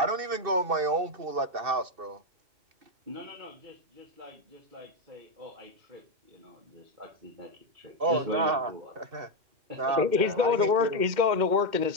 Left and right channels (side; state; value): left; late; 2.6 ms